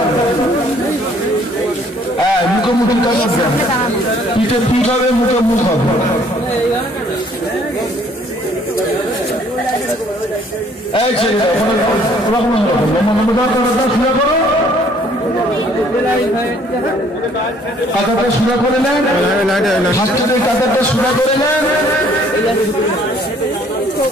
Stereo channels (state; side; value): normal; both; correlation 0.60